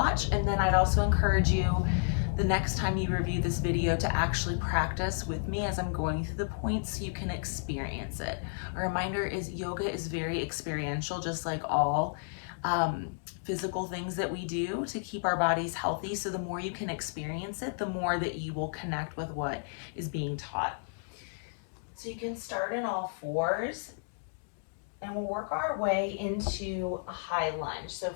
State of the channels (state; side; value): silent; right; digital silence